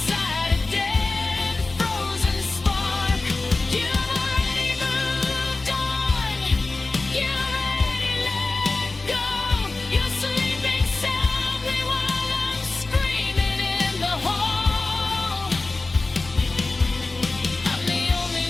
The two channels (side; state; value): right; quieter; 3.3 dB